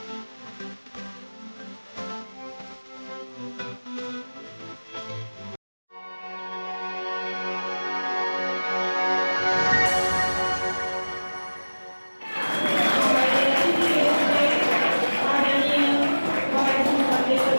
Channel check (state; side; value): inverted; both; correlation -1.00